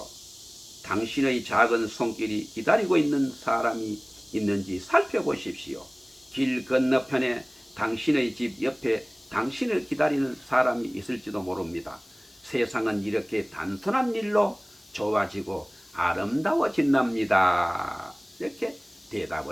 당신의 작은 손길이 기다리고 있는 사람이 있는지 살펴보십시오. 길 건너편에 당신의 집 옆에 당신을 기다리는 사람이 있을지도 모릅니다. 세상은 이렇게 단순한 일로 좋아지고 아름다워진답니다. 이렇게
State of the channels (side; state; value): left; noise; hiss, 27 dB below the sound